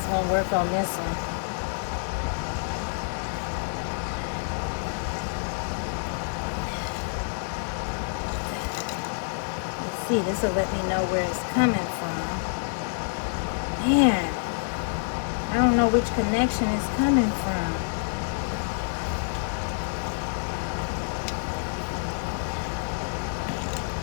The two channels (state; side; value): silent; right; 60 dB below the other